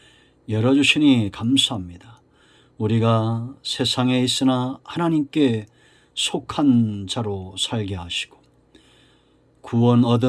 열어주시니 감사합니다. 우리가 세상에 있으나 하나님께 속한 자로 살게 하시고 구원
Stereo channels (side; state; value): both; identical; correlation 1.00